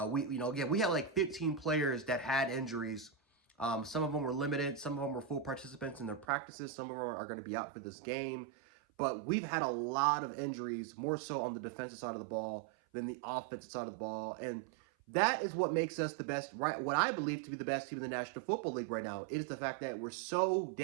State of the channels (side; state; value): left; drops out; at 6.2 s